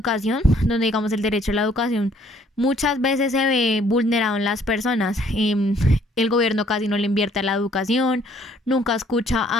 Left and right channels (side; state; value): both; normal; correlation 0.62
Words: donde digamos el derecho a la educación muchas veces se ve vulnerado en las personas. El gobierno casi no le invierte a la educación, nunca escucha